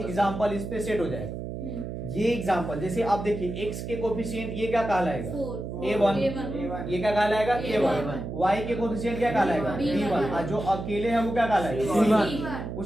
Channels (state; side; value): noise; right; hum, 7 dB below the sound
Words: एग्जांपल इस पे सेट हो जाएगा। ये एग्जांपल जैसे आप देखिए, x के कोफिशिएंट ये क्या कहलाएगा? a1, ये क्या कहलाएगा? a1। y के कोफिशिएंट क्या कहलाएगा? b1, और जो अकेले है वो क्या कहलाएगा? c1।